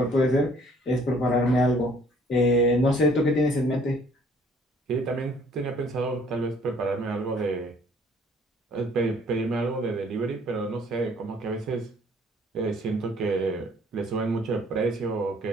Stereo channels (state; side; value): normal; both; correlation 0.58